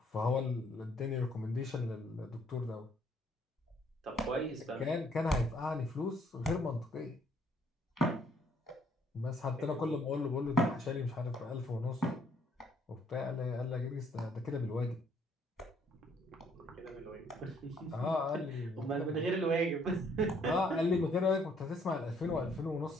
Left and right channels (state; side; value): normal; both; correlation 0.66